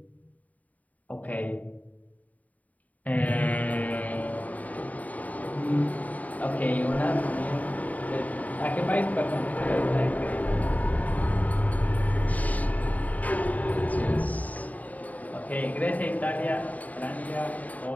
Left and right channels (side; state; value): right; late; 0.073 ms